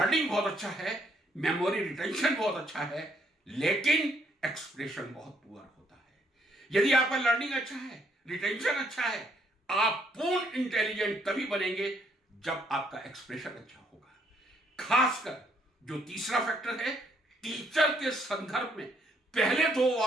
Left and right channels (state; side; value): normal; both; correlation 0.70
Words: बहुत अच्छा है, मेमोरी रिटेंशन बहुत अच्छा है, लेकिन एक्सप्रेशन बहुत पुअर होता है। यदि आपका लर्निंग अच्छा है, रिटेंशन अच्छा है, आप पूर्ण इंटेलिजेंट तभी बनेंगे जब आपका एक्सप्रेशन अच्छा होगा। खासकर जो तीसरा फैक्टर है, टीचर के संदर्भ में पहले 2